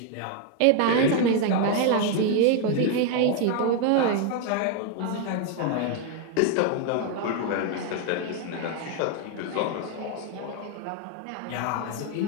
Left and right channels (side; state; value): both; different; correlation 0.01